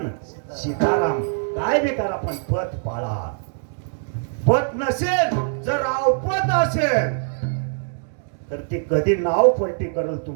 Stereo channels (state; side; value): silent; left; digital silence